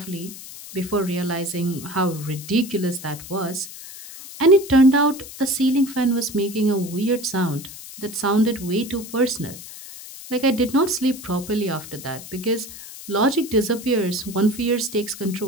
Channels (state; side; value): noise; left; hiss, 14 dB below the sound